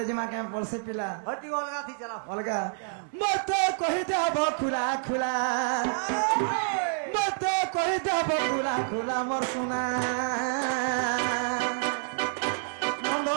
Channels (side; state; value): left; silent; 59 dB below the other